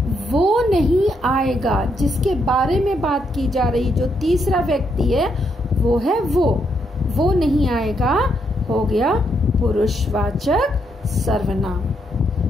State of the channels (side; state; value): both; normal; correlation 0.77